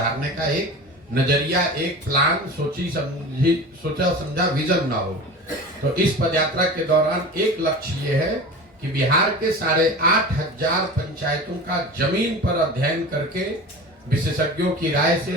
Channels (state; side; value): normal; both; correlation 0.33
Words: का एक नजरिया, एक प्लान, सोचा समझा विजन ना हो। तो इस पदयात्रा के दौरान एक लक्ष्य ये है कि बिहार के 8,500 पंचायतों का जमीन पर अध्ययन करके, विशेषज्ञों की राय से,